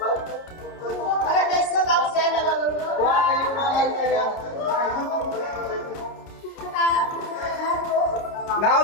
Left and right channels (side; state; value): right; late; 30 ms